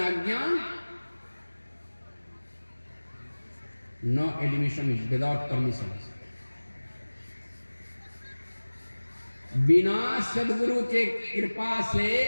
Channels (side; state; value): both; inverted; correlation -1.00